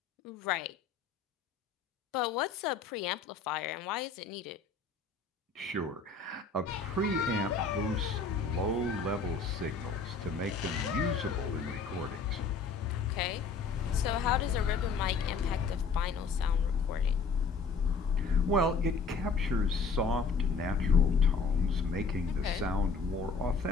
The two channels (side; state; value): right; quieter; 4.8 dB